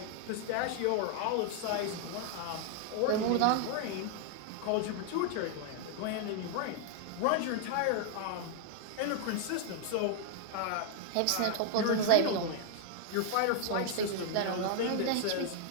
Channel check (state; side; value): different; both; correlation 0.00